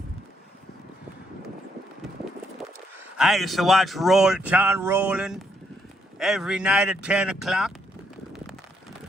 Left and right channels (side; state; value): both; normal; correlation 0.74